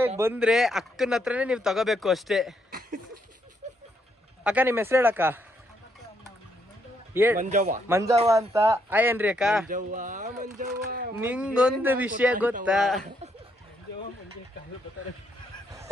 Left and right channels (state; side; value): normal; both; correlation 0.75